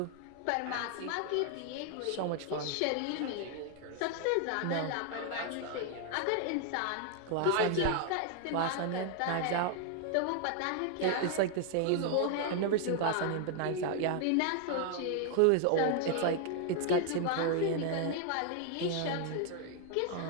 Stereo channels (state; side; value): different; both; correlation 0.00